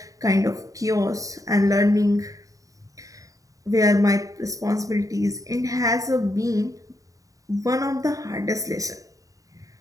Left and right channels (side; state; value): left; late; 0.16 ms